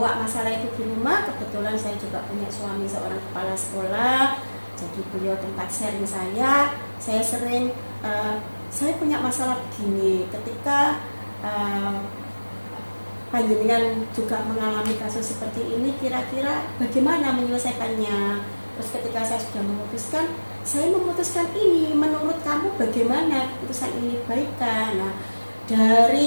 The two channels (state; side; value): inverted; both; correlation -1.00